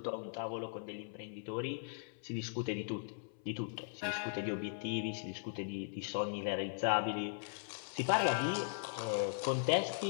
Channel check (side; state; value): right; silent; 52 dB below the other